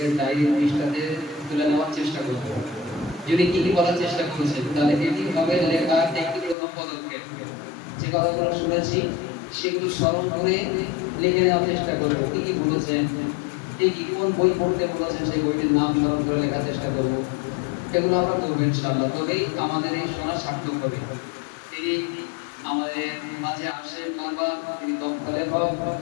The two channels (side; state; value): right; drops out; at 6.6 s